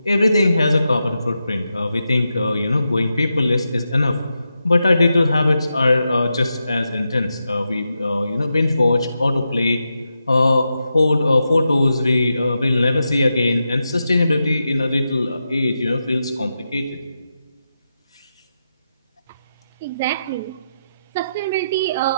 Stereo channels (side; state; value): both; inverted; correlation -0.87